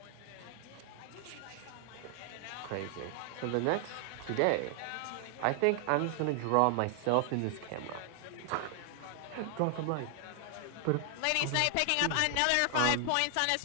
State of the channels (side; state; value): both; different; correlation 0.00